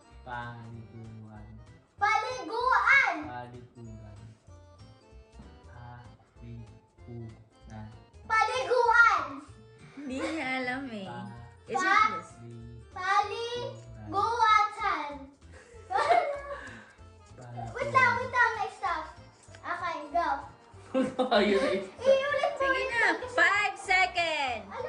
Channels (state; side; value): identical; both; correlation 1.00